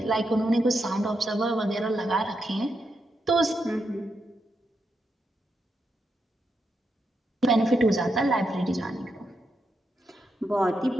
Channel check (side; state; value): both; normal; correlation 0.84